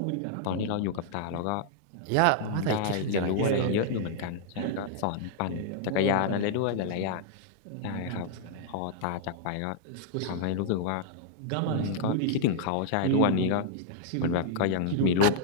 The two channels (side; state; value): both; different; correlation -0.01